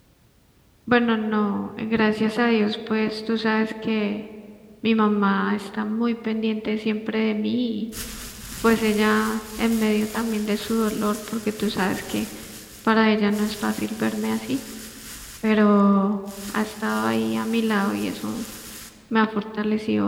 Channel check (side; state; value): both; identical; correlation 1.00